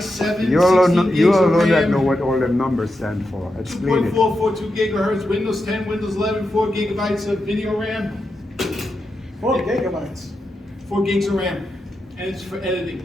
You all 16 know, gigs you all of know that RAM, know what all them numbers stand for. Explain it. 2.442 gigahertz, Windows 10, Windows 11, 4 gigabytes of video RAM, 4 gigabytes. 4 gigs of RAM, and it's for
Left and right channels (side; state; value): both; normal; correlation 0.87